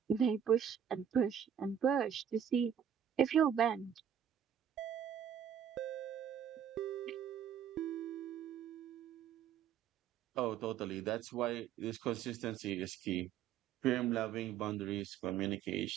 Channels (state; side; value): quieter; left; 8.8 dB